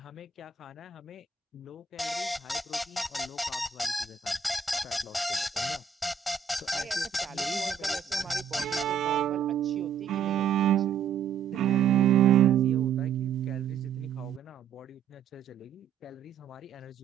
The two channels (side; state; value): left; quieter; 6.9 dB